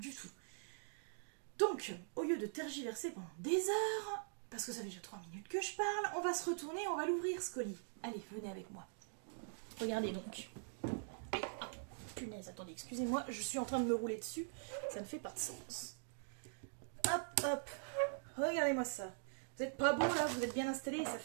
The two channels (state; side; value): silent; left; digital silence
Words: tout. Donc, au lieu de tergiverser pendant des heures, parce que ça fait déjà 3 minutes que je parle, on va se retourner, on va l'ouvrir ce colis. Allez, venez avec moi. Regardez donc. Allez, ah, punaise, attendez, excusez-moi, je suis en train de me rouler dessus, ça ne fait pas de sens. Hop, hop, regardez-moi ça. Vous êtes pas beau là, vous êtes bien installés et ça